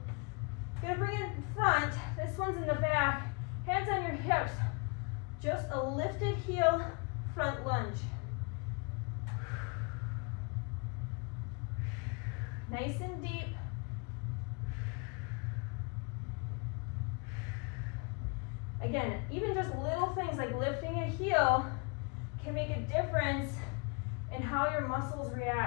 I'm gonna bring it in front, this one's in the back, hands on your hips. Just a lifted heel, front lunge. Nice and deep. Again, even just little things like lifting a heel can make a difference in how your muscles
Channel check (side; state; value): right; quieter; 33.2 dB